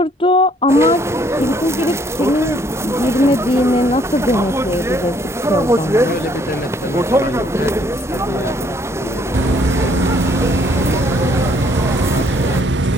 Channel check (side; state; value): both; normal; correlation 0.65